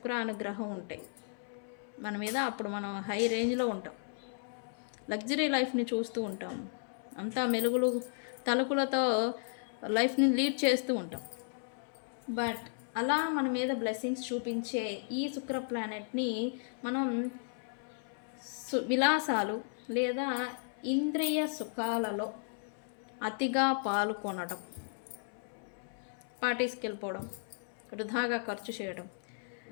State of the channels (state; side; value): silent; right; 55 dB below the other